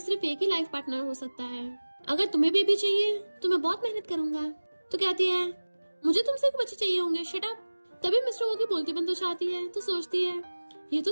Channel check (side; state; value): both; inverted; correlation -1.00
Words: एक ही लाइफ पार्टनर हो सकता है, अगर तुम्हें बेबी चाहिए तो मैं बहुत मेहनत करूंगा। तो कहती है मुझे तुमसे एक बच्चे चाहिए होंगे, शट अप। तभी मिस्टर वो की बोलती बंद हो जाती है। तो सोचती है ये तो